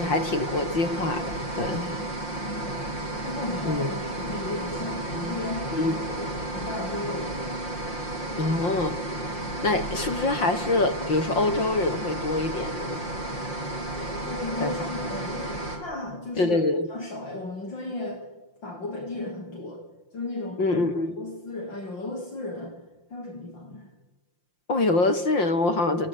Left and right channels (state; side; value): late; right; 5.7 ms